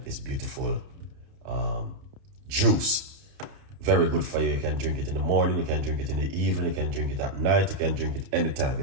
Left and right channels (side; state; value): left; late; 30 ms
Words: this beautiful juice. Very good for you. You can drink it in the morning, you can drink it in the evening, you can drink it at night, you can drink it anytime.